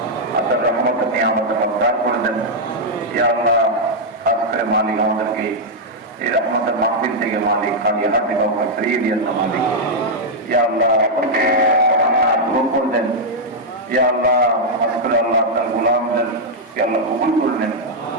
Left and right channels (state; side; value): normal; both; correlation -0.04